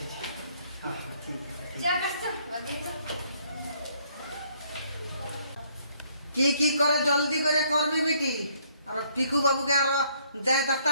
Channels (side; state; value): both; inverted; correlation -0.66